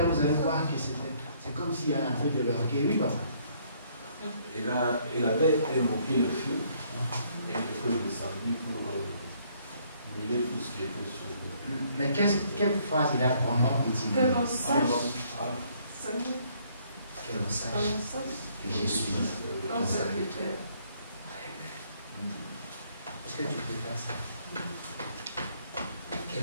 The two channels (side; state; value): both; inverted; correlation -0.66